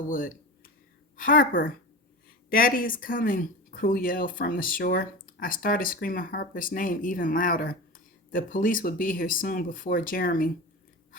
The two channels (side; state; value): both; normal; correlation 0.28